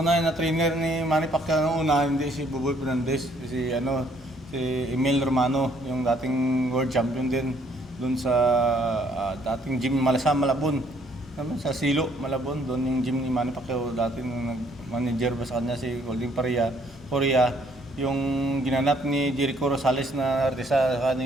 na trainer ni Manny Pacquiao noong una, hindi si Buboy Fernandez, si Emil Romano, yung dating world champion din doon sa dating gym Malabon. Sa Silo, Malabon, doon yung gym ni Manny Pacquiao dati nung nag-manager ba sa kanya si Golding Korea, yung ginanap ni Jericho Rosales na artista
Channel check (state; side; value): normal; both; correlation 0.65